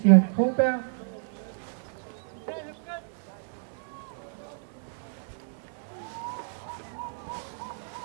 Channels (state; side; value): silent; left; digital silence